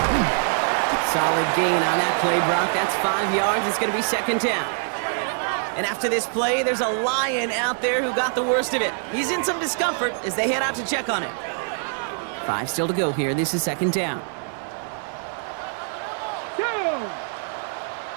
Solid gain on that play, Brock. That's 5 yards. It's going to be second down. And after this play, there's a Lion out there who got the worst of it. He's in some discomfort as they head out to check on him. 5 still to go here. This is second down.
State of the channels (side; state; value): left; silent; 63 dB below the other